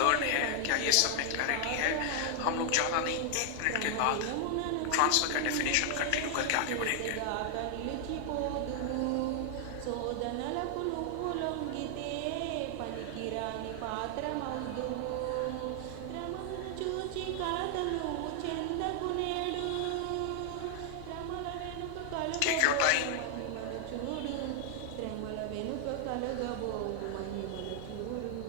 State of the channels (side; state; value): both; different; correlation 0.00